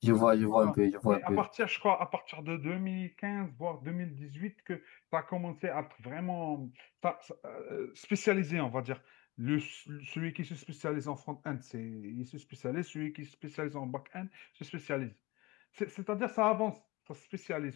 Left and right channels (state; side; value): quieter; right; 21.9 dB